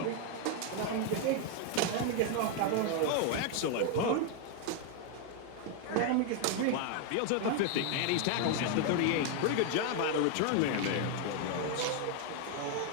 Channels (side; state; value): both; different; correlation 0.00